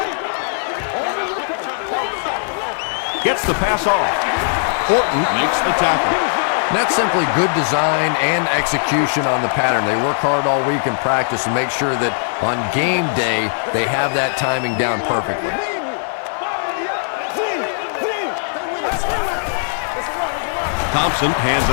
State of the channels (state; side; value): silent; right; digital silence